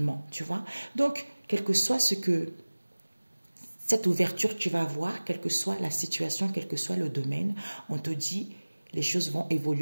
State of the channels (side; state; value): both; inverted; correlation -1.00